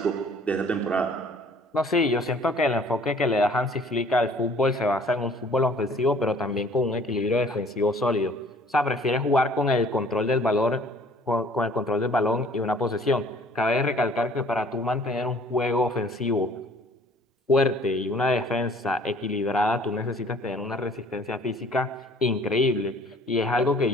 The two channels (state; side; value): normal; both; correlation 0.54